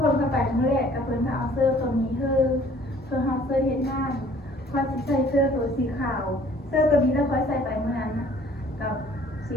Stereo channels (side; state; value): both; normal; correlation 0.55